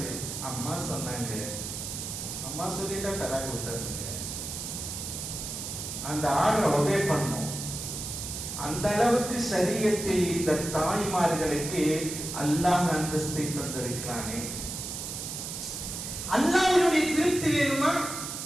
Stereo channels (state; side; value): noise; right; hiss, 6 dB below the sound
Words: அம்மா சொன்னாங்க, அம்மா சொல்லிட்டா தலாக்கு விட்டுறதுங்க. அந்த ஆர்டரை ஒபே பண்ணும். அந்த அளவுக்கு சரியத்தில் இந்த தாய்மார்களுக்கு அல்லாஹ் அந்தஸ்தை தந்திருக்கிறானே. அல்லாஹ்வுடைய திருப்தி வேணுமா?